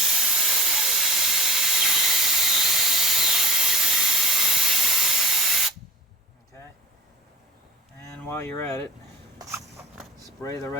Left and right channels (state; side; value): normal; both; correlation 0.41